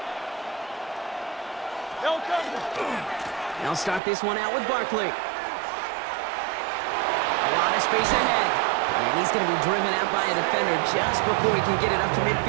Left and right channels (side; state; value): left; drops out; at 4.0 s